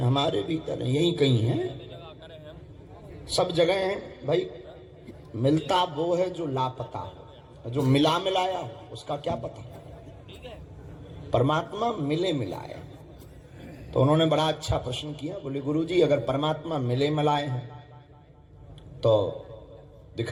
हमारे भीतर है, यही कहीं है, सब जगह है भाई। मिलता वो है जो लापता हो, जो मिला मिलाया हो उसका क्या पता। परमात्मा मिले मिलाए। तो उन्होंने बड़ा अच्छा प्रश्न किया। बोले गुरुजी अगर परमात्मा मिले मिलाए हैं तो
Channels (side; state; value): both; identical; correlation 1.00